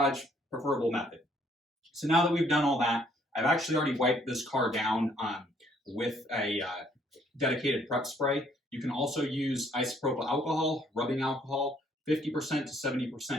preferable method. So now that we've done all that, I've actually already wiped this car down with a dedicated prep spray. You can also use isopropyl alcohol, rubbing alcohol, 50% to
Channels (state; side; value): normal; both; correlation 0.65